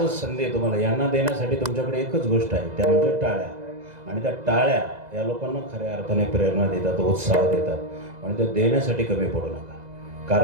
संधी आहे तुम्हाला. यांना देण्यासाठी तुमच्याकडे एकच गोष्ट आहे, त्या म्हणजे टाळ्या. आणि त्या टाळ्या या लोकांना खऱ्या अर्थाने प्रेरणा देतात, उत्साह देतात. आणि त्या देण्यासाठी कमी पडू नका.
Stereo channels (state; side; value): late; left; 2.0 ms